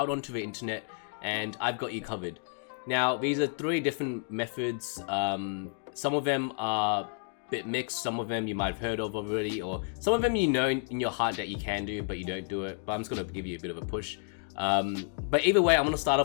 onto the internet, and I've got you covered. Now, these are 3 different methods. Some of them are a bit mixed, some of them you might have heard of already, or some of them you know in your heart that you can do, but you don't do it. But I'm just going to give you a bit of a push. But either way, I'm going to start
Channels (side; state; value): right; silent; 57 dB below the other